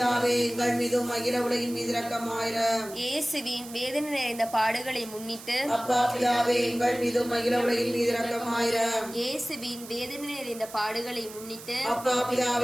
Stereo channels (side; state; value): right; noise; hiss, 15 dB below the sound